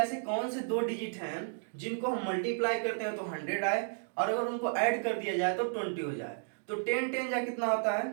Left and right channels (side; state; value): left; silent; digital silence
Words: कौन से दो डिजिट हैं जिनको हम मल्टीप्लाई करते हैं तो 100 आए, और अगर उनको ऐड कर दिया जाए तो 20 हो जाए। तो 10 10 जा कितना होता है